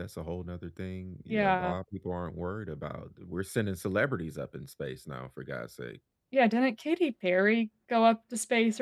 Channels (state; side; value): identical; both; correlation 1.00